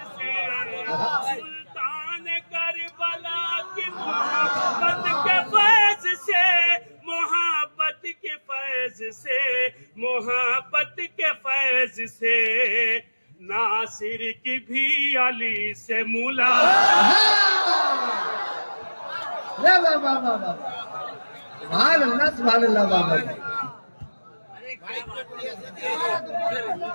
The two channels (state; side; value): inverted; both; correlation -1.00